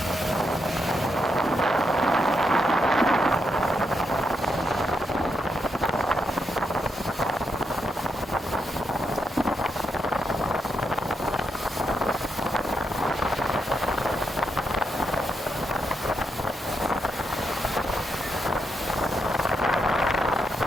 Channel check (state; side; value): normal; both; correlation 0.81